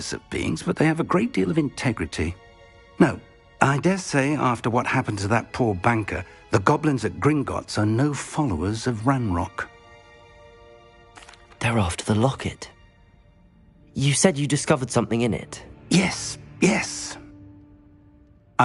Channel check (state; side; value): identical; both; correlation 1.00